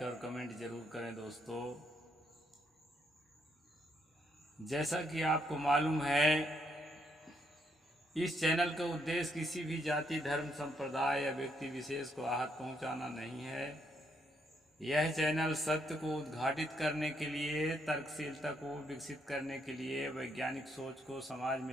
और कमेंट जरूर करें। दोस्तों, जैसा कि आपको मालूम है, इस चैनल का उद्देश्य किसी भी जाति, धर्म, संप्रदाय या व्यक्ति विशेष को आहत पहुंचाना नहीं है। यह चैनल सत्य को उद्घाटित करने के लिए, तर्कशीलता को विकसित करने के लिए, वैज्ञानिक सोच को समाज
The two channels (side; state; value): both; normal; correlation 0.74